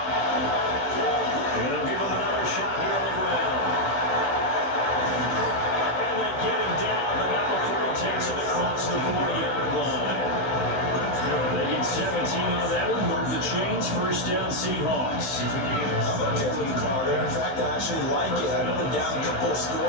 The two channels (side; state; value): right; late; 16 ms